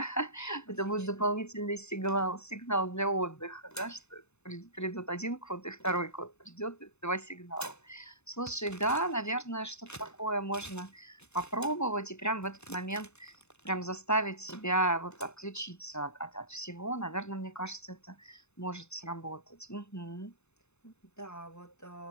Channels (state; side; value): late; right; 0.81 ms